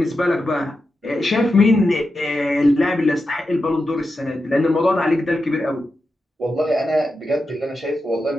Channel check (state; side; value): normal; both; correlation 0.89